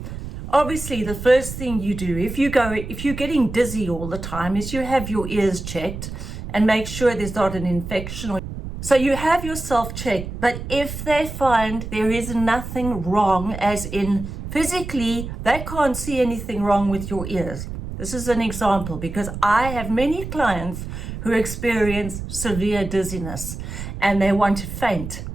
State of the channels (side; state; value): right; noise; rumble, 8 dB below the sound